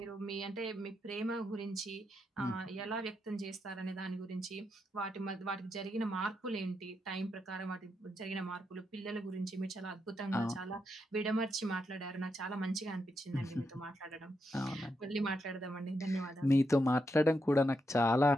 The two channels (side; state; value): both; normal; correlation 0.83